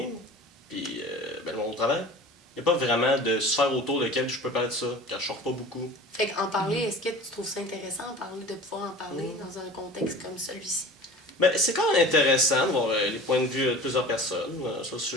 puis ben, mon travail. Il n'y a pas vraiment de sphère autour de laquelle je peux parler de ça, car je sors pas beaucoup. Fait qu'en parler, est-ce que tu trouves ça intéressant de pouvoir en parler dans un contexte comme celui-ci? Ben, c'est quand même intéressant de voir les points de vue de plusieurs personnes sur le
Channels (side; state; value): both; normal; correlation 0.40